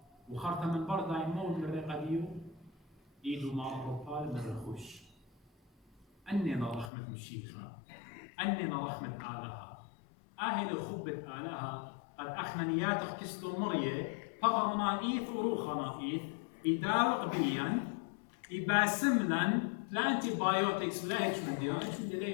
وخرطة من بردا يمون من رقديو إيدو مع الربال من رخوش أننا رحمة مشيخة أننا رحمة آلها أهل خبة آلها قد أخنا نياتك كستو مرية فقرنا إيث وروخنا إيث إداوق بيا إباسملن لا أنتي بايوتكس لا هيش من دي هيش من دي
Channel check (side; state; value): right; drops out; at 6.9 s